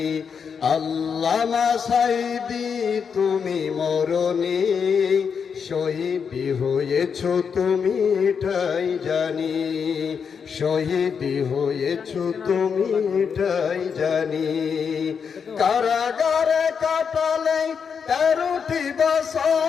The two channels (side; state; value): right; quieter; 6.5 dB